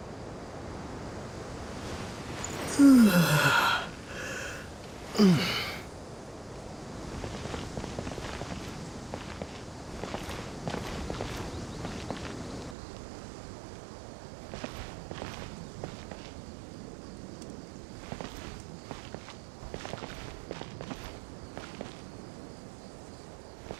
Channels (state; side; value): drops out; left; at 12.8 s